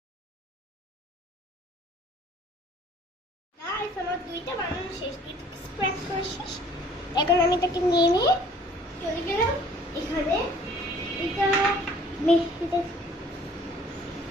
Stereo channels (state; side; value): normal; both; correlation 0.54